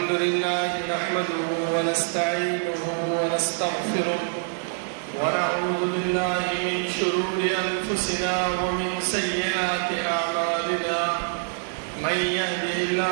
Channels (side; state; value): left; silent; 62 dB below the other